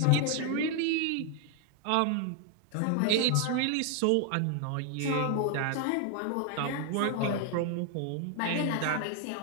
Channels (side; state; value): both; different; correlation 0.00